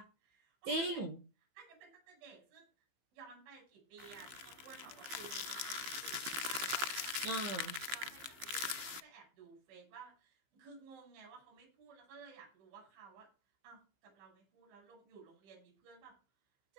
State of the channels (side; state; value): left; late; 15 ms